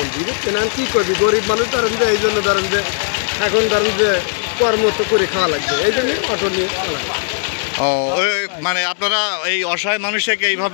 বুঝছেন? কি করবি, গরিব মানুষ ধরেন যে এই জন্য ধরেন যে এখন ধরেন যে কর্ম তো করে খাওয়া লাগবে, এই জন্য অটো নিয়ে খাওয়া লাগবে। ও, আপনারা এই অসহায় মানুষকে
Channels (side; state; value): right; silent; digital silence